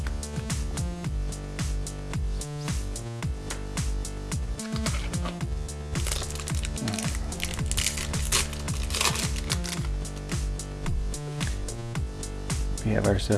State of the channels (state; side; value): identical; both; correlation 1.00